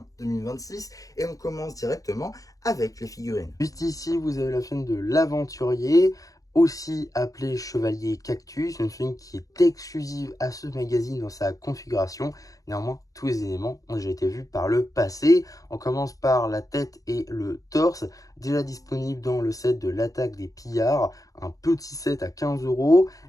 2026. Et on commence directement avec les figurines. Juste ici, vous avez la figurine de l'aventurier, aussi appelée Chevalier Cactus, une figurine qui est exclusive à ce magazine dans sa configuration. Néanmoins, tous les éléments ont déjà été vus par le passé. On commence par la tête et le torse, déjà disponible dans le set de l'attaque des pillards, un petit set à 15 €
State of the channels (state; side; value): late; right; 0.17 ms